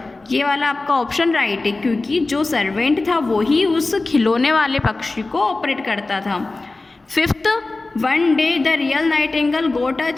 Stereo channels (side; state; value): right; quieter; 3.3 dB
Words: ये वाला आपका ऑप्शन राइट है, क्योंकि जो सर्वेंट था वो ही उस खिलौने वाले पक्षी को ऑपरेट करता था। 5th one day the real nightingale got a